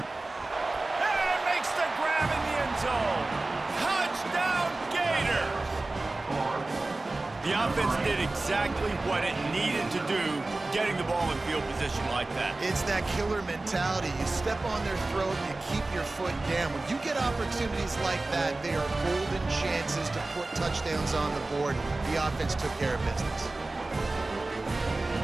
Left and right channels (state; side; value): quieter; left; 3.1 dB